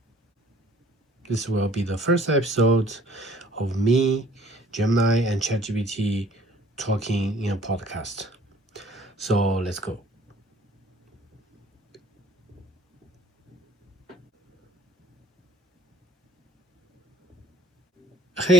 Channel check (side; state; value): both; normal; correlation 0.55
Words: This will be the first episode of me, Gemini, and ChatGPT talking in a podcast. So let's go.